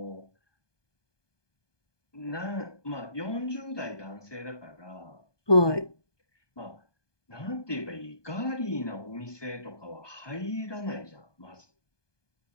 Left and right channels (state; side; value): late; right; 1.2 ms